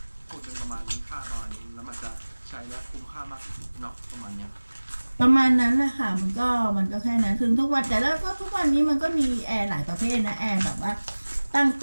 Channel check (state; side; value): inverted; both; correlation -1.00